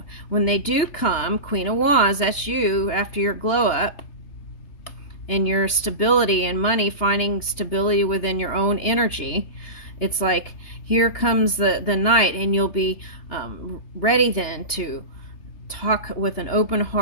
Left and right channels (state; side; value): late; right; 3.3 ms